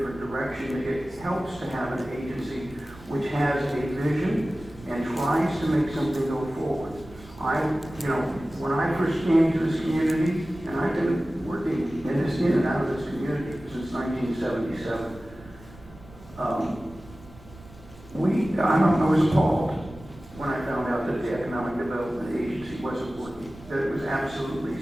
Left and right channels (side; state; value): right; noise; rumble, 21 dB below the sound